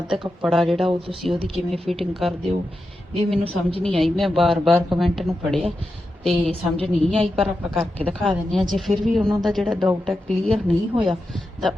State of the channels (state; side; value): normal; both; correlation 0.89